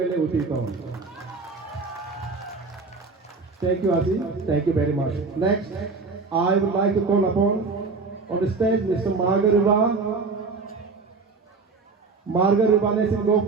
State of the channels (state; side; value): quieter; left; 4.2 dB